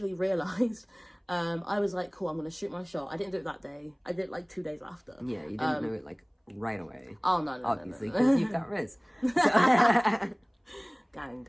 realised, I was like, cool, I'm going to shoot my shot. I didn't do it that day. I did it like 2 days after. Yeah, you didn't do it like right away. Oh, no. Obviously, because you've got Riz. So. Gang,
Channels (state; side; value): identical; both; correlation 1.00